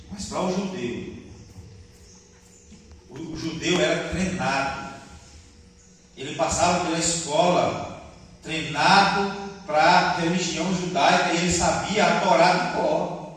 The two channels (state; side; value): identical; both; correlation 1.00